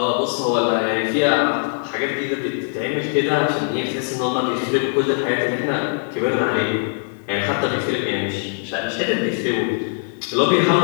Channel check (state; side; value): silent; right; digital silence